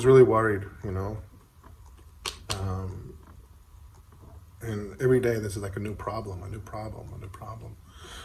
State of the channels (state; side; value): identical; both; correlation 1.00